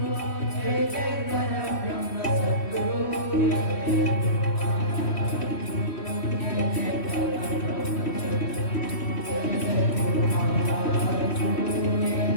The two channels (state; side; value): late; right; 3.1 ms